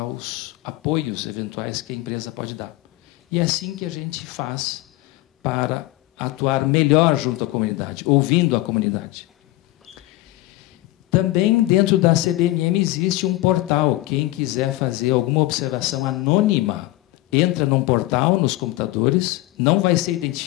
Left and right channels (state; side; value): quieter; right; 17.8 dB